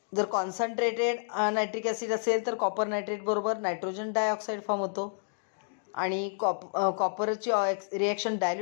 जर concentrated nitric acid असेल तर copper nitrate बरोबर nitrogen dioxide form होतो आणि कॉपरची reaction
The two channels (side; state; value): right; silent; digital silence